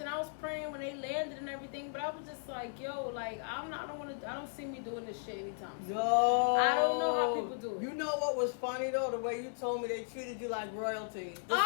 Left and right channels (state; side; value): silent; right; digital silence